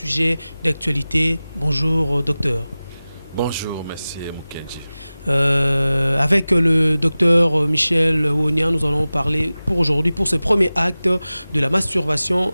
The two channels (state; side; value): inverted; both; correlation -0.97